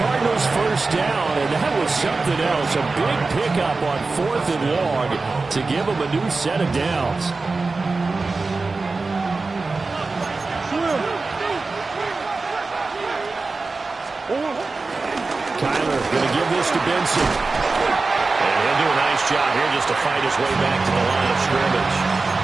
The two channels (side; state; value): left; quieter; 3.8 dB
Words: Cardinals first down. And that was something else. A big pickup on 4th and long to give them a new set of downs. Kyler going to give this to Benson. And he'll do a nice job here just to fight his way back to the line of scrimmage.